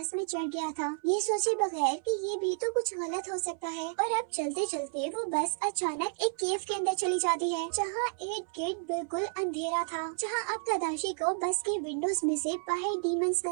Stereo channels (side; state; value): left; silent; 57 dB below the other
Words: में चढ़ गया था, ये सोचे बगैर कि ये भी तो कुछ गलत हो सकता है। और अब चलते चलते वो बस अचानक एक केव के अंदर चली जाती है, जहाँ इर्द गिर्द बिल्कुल अंधेरा था, जहाँ अब तदाशी को बस की विंडोज में से बाहर डीमंस